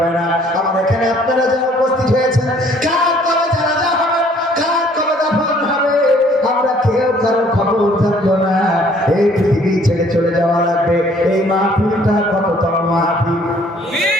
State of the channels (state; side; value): normal; both; correlation 0.59